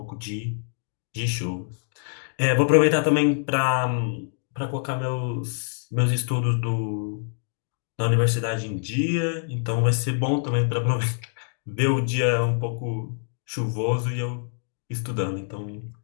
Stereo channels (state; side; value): silent; right; digital silence